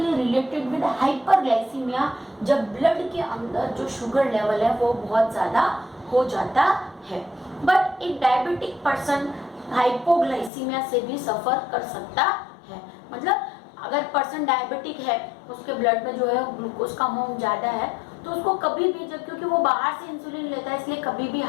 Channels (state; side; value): drops out; right; at 10.5 s